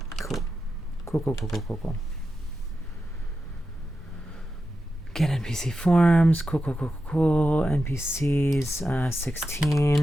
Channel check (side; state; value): both; normal; correlation 0.90